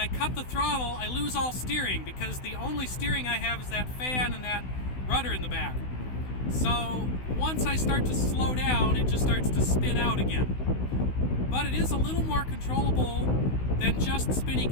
cut the throttle, I lose all steering because the only steering I have is that fan and that rudder in the back. So once I start to slow down, it just starts to spin out again. but it is a little more controllable than just spinny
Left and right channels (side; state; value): right; late; 16 ms